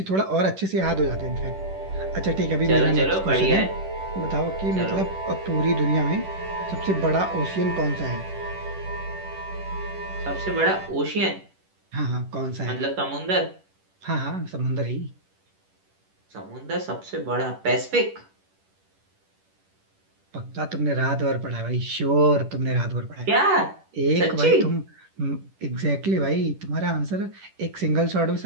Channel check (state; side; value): late; left; 10 ms